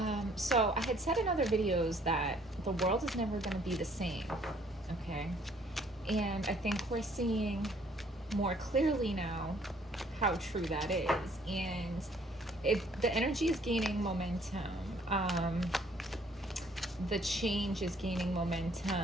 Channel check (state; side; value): normal; both; correlation 0.62